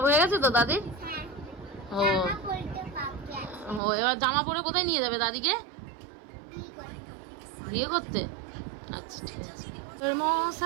হয়ে গেছে তো দাদির? ও ও, এবার জামা পরে কোথায় নিয়ে যাবে দাদিকে? বিয়ে করতে? আচ্ছা ঠিক আছে।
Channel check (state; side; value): drops out; left; at 3.8 s